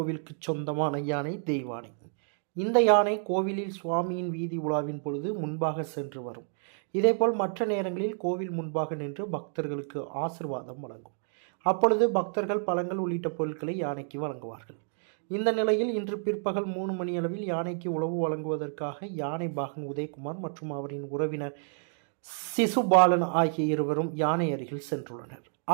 சொந்தமான யானை தெய்வானை. இந்த யானை கோவிலில் சுவாமியின் வீதி உலாவின் பொழுது முன்பாக சென்று வரும். இதேபோல் மற்ற நேரங்களில் கோவில் முன்பாக நின்று பக்தர்களுக்கு ஆசிர்வாதம் வழங்கும். அப்பொழுது பக்தர்கள் பழங்கள் உள்ளிட்ட பொருட்களை யானைக்கு வழங்குவார்கள். இந்த நிலையில் இன்று பிற்பகல் 3 மணியளவில் யானைக்கு உணவு வழங்குவதற்காக யானை பாகன் உதயகுமார் மற்றும் அவரின் உறவினர் சிசுபாலன் ஆகிய இருவரும் யானை அருகில் சென்றுள்ளனர்.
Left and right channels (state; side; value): silent; left; 58 dB below the other